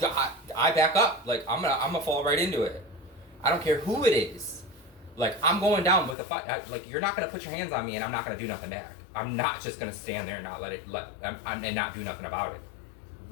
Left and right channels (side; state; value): right; drops out; at 6.2 s